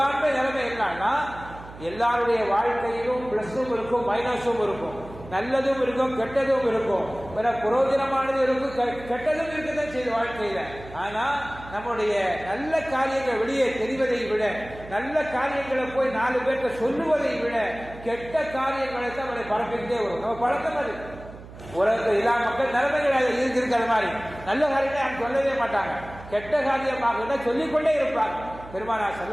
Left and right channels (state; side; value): noise; right; hum, 16 dB below the sound